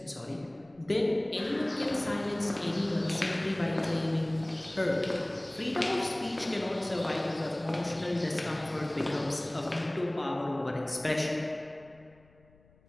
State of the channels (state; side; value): noise; left; rumble, 29 dB below the sound